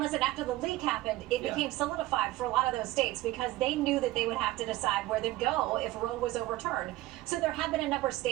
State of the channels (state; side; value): quieter; left; 17.4 dB